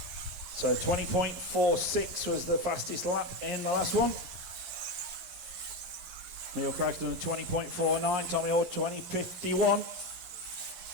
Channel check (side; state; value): left; late; 11 ms